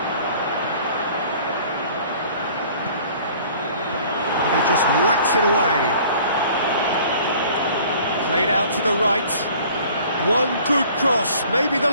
And he just whacks it away. Played out to the right. One good cross, maybe the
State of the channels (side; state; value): both; inverted; correlation -0.51